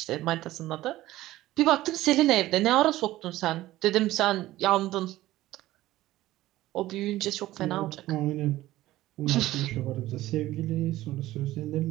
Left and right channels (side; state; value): left; quieter; 16.0 dB